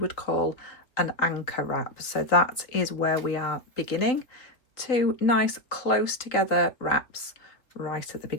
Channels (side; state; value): right; late; 3.9 ms